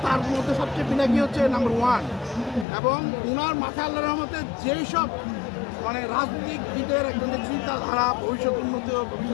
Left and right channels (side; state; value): right; drops out; at 2.7 s